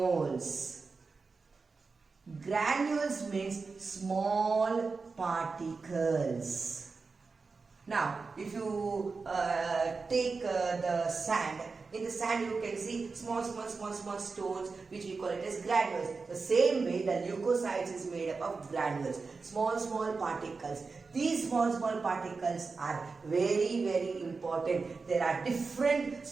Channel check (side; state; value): left; quieter; 4.4 dB